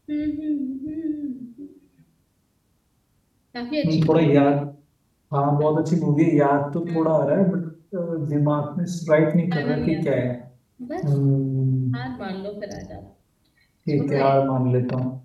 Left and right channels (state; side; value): identical; both; correlation 1.00